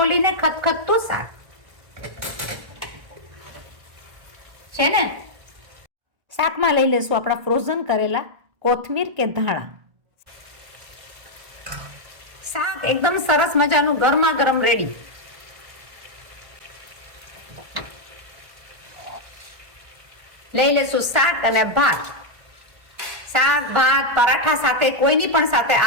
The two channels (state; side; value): late; left; 1.4 ms